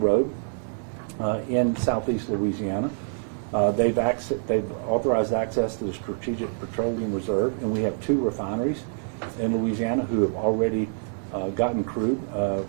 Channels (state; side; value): silent; left; digital silence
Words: in southeast Louisiana. They've authorized access to the Strategic Petroleum Reserve, and we have 2 refineries in Louisiana who have already gotten crude